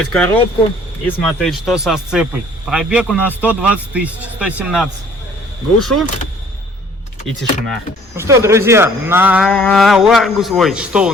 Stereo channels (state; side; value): normal; both; correlation 0.56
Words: коробку и смотреть, что со сцепой. Пробег у нас 120 тысяч, 117. Глушу. И тишина. Ну что, друзья, на Ларгус, что у